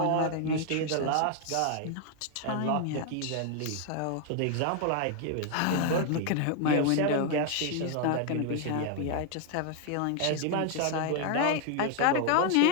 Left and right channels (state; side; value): different; both; correlation 0.00